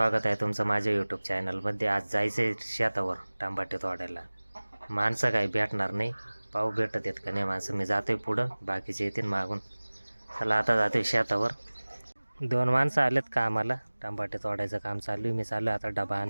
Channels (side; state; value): both; inverted; correlation -1.00